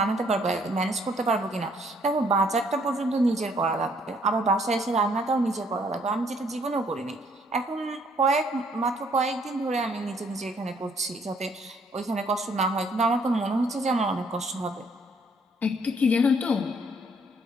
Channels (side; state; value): both; normal; correlation 0.65